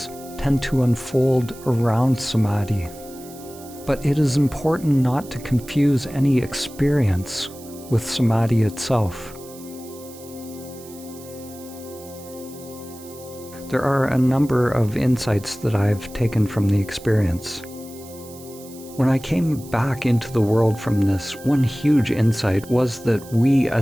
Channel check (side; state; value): right; noise; hiss, 19 dB below the sound